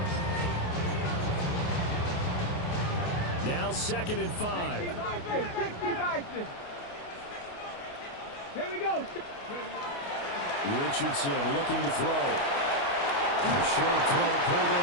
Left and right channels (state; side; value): late; right; 28 ms